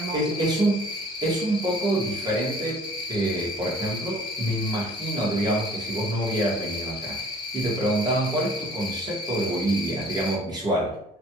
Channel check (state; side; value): normal; both; correlation 0.53